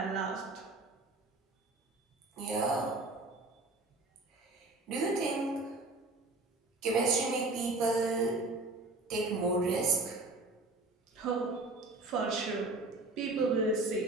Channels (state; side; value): quieter; left; 3.1 dB